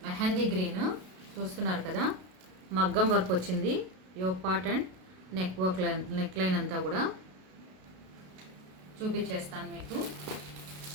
mehndi green. చూస్తున్నారు కదా మగ్గం వర్క్ వచ్చింది. Yoke part and neck line అంతా కూడా చూపించేస్తాను మీకు.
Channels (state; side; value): late; left; 32 ms